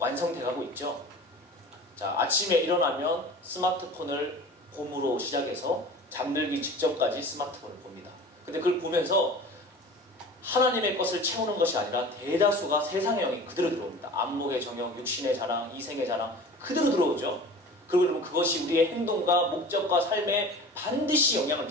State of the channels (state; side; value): normal; both; correlation 0.39